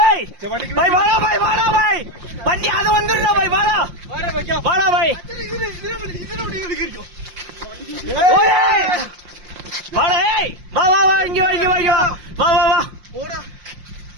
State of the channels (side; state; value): left; late; 5.6 ms